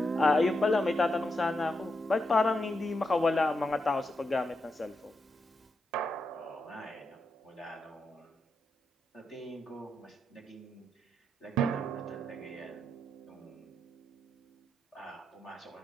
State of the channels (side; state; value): both; normal; correlation 0.84